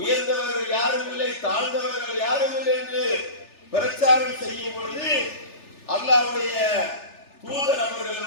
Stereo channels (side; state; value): right; late; 3.4 ms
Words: யாரும் இல்லை, தாழ்ந்தவர்கள் யாரும் இல்லை என்று பிரச்சாரம் செய்யும் பொழுது அல்லாஹ்வுடைய தூதர்